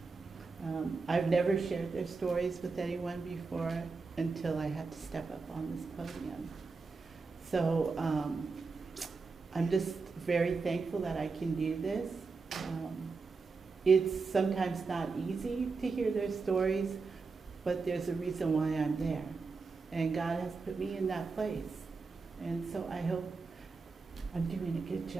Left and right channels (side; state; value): left; quieter; 4.4 dB